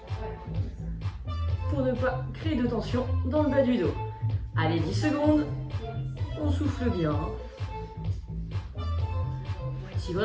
Pour ne pas créer de tension dans le bas du dos. Allez, 10 secondes. On souffle bien. Si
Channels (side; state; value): both; identical; correlation 1.00